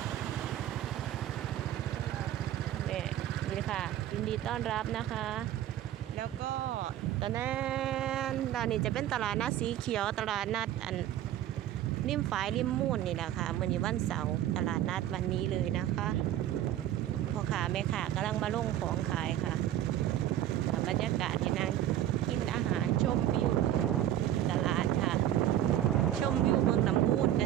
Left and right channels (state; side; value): quieter; left; 12.1 dB